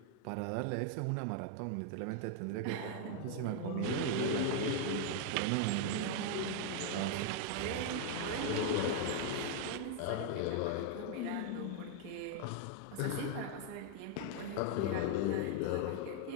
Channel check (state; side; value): different; both; correlation 0.00